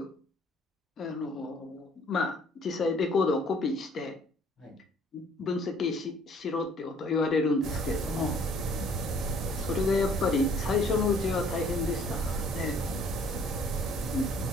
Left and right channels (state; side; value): normal; both; correlation 0.58